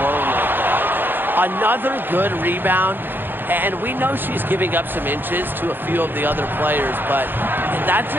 like that. Another good rebound, and we know she's giving up some inches to a few of the other players, but that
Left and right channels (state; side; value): late; left; 0.096 ms